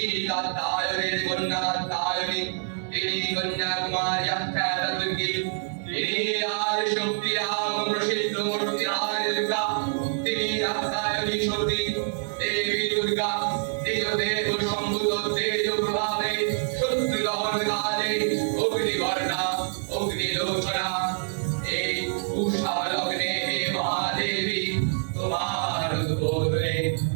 কাত্যায়নের কন্যা কাত্যায়নী তিনি কন্যাকুমারী আখ্যাতা দুর্গী তিনি আদি শক্তি রাম প্রসিদ্ধ মূর্তি আদি দুর্গা তিনি আখ্যায়নী সতী দেবী দুর্গা নিজ দেহ সম্ভূত তেজ প্রভাবে শত্রু দহন কালে অগ্নিবর্ণা অগ্নিলোচনা এই উষা লগ্নে হে মহাদেবী তোমার উদ্বোধনে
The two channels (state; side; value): silent; left; digital silence